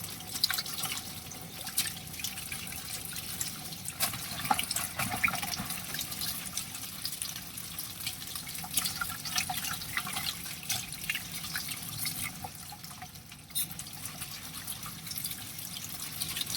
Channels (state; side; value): normal; both; correlation 0.92